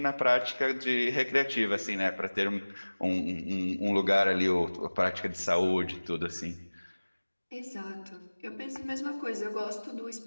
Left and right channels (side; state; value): both; inverted; correlation -1.00